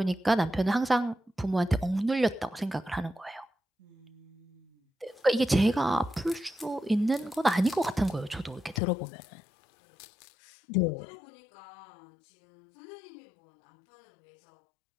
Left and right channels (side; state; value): right; drops out; at 8.8 s